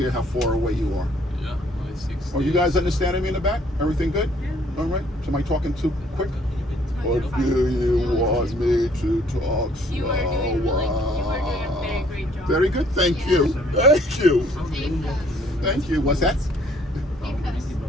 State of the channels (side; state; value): both; normal; correlation 0.62